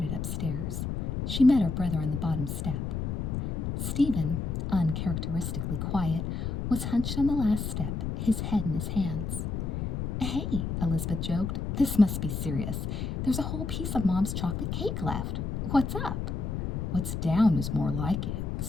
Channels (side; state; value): left; noise; rumble, 2 dB below the sound